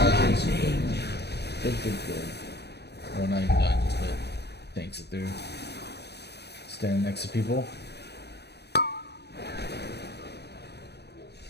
Good. Well, not even dodges, but tanks it through. Stand next to people.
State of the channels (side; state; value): right; late; 0.48 ms